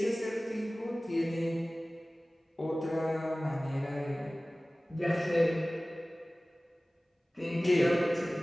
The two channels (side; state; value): both; normal; correlation 0.98